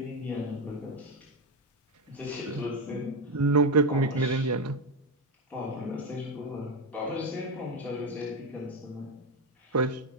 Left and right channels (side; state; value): both; normal; correlation 0.12